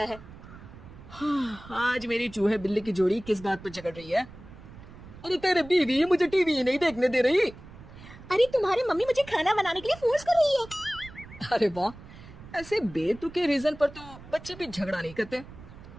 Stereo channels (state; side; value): noise; right; rumble, 17 dB below the sound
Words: है। हाँ, आज मेरी चूहे बिल्ली की जोड़ी किस बात पर झगड़ रही है? अरे तेरे बीवी मुझे टीवी ही नहीं देखने दे रही। अरे तुम्हारी मम्मी मुझे खाना बनाने के लिए फोर्स कर रही है। अरे वाह, ऐसे बेतुके रीजन पर तो बच्चे भी झगड़ा नहीं करते।